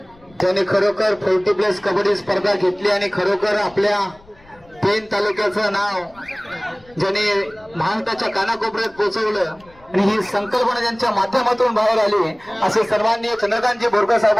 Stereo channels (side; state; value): left; noise; rumble, 28 dB below the sound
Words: त्याने खरोखर 40+ कबड्डी स्पर्धा घेतली आणि खरोखर आपल्या पेन तालुक्याचं नाव ज्याने महाराष्ट्राच्या कानाकोपऱ्यात पोहोचवलं आणि ही संकल्पना ज्यांच्या माध्यमातून बाहेर आली असे सन्माननीय चंद्रकांतजी बोरकर